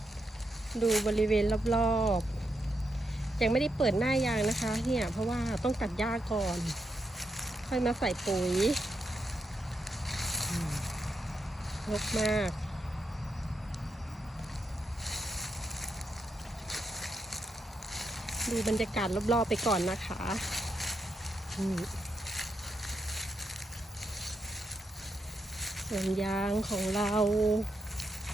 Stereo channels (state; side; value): normal; both; correlation 0.83